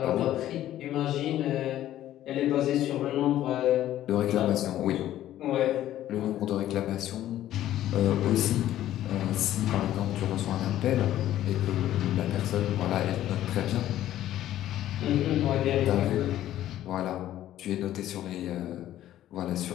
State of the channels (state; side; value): quieter; right; 13.0 dB